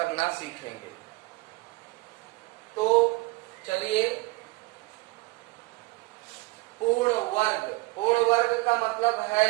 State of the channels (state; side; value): quieter; left; 22.7 dB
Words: सीखेंगे। तो चलिए, पूर्ण वर्ग का मतलब